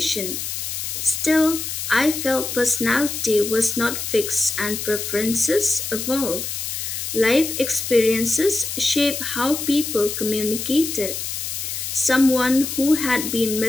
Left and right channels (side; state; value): left; noise; hiss, 5 dB below the sound